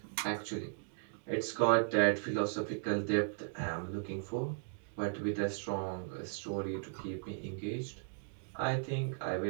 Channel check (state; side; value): silent; left; digital silence